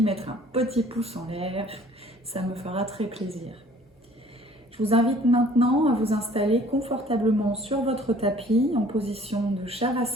mettre un petit pouce en l'air, ça me fera très plaisir. Je vous invite maintenant à vous installer confortablement sur votre tapis en position de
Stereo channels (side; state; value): both; normal; correlation 0.54